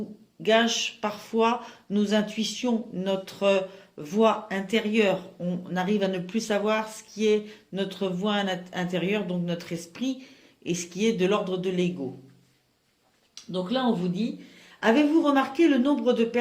gâche parfois nos intuitions, notre voix intérieure. On arrive à ne plus savoir ce qui est notre voix intérieure, donc notre esprit, et ce qui est de l'ordre de l'ego. Donc là, on vous dit, avez-vous remarqué le nombre de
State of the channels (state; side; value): identical; both; correlation 1.00